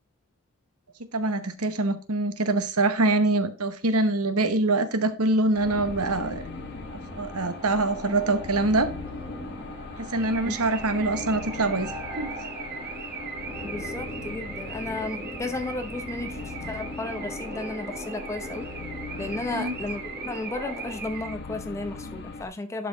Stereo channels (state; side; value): normal; both; correlation 0.17